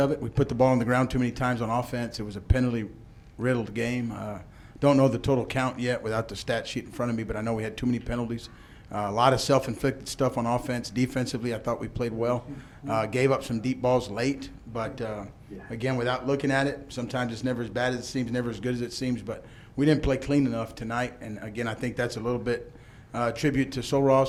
it. We put the ball on the ground too many times on offense. It was a penalty-riddled game. Don't know the total count yet without the stat sheet in front of me, but I know we had too many penalties. A lot of self-inflicted stuff on offense. Defensively, I thought we played well. Gave up some deep balls late, but again, without looking at it, sometimes it's never as bad as it seems, never as good as it seems, but we didn't play clean enough tonight, and again, I think that's a little bit tribute to Sol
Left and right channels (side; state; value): both; identical; correlation 1.00